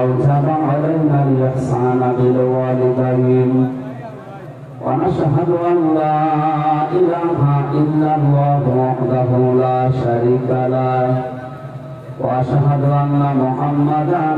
আওজাবা আলাইনা আল-ইহসানা বিল ওয়ালিদাইন ওয়া নাশহাদু আন লা ইলাহা ইল্লাল্লাহু ওয়াহদাহু লা শারীকা লাহু ওয়া আশহাদু আন্না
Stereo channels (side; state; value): both; identical; correlation 1.00